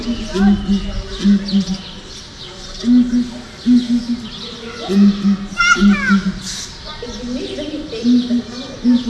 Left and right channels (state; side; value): identical; both; correlation 1.00